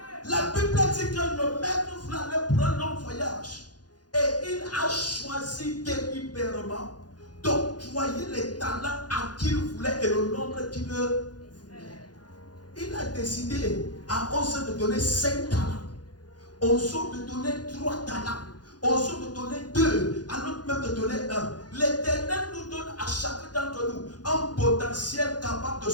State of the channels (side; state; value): right; late; 0.69 ms